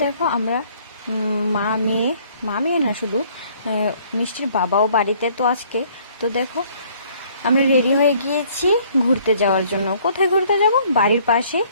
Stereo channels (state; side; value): inverted; both; correlation -0.60